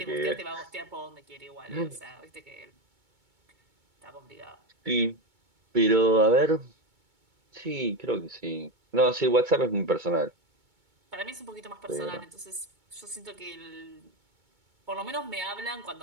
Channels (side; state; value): left; late; 2.2 ms